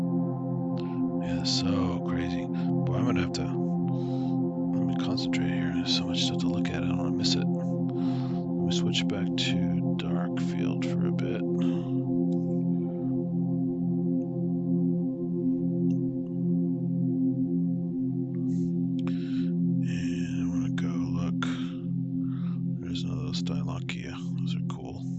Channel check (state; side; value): identical; both; correlation 1.00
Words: Yeah, so crazy. Boy, I'm gonna have to let me concentrate here. There's so much stuff to look at. I don't want to miss it. Let me switch back to dark field for a bit. And I want to go look. There's another Stylochia. Those are cool.